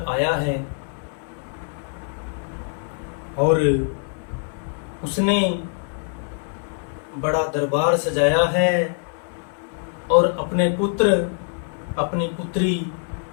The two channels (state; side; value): silent; right; 58 dB below the other